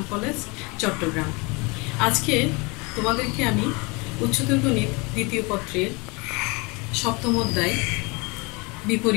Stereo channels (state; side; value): quieter; right; 27.9 dB